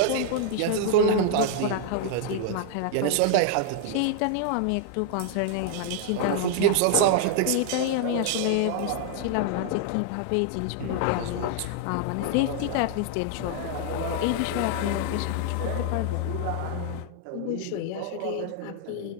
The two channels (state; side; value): different; both; correlation 0.00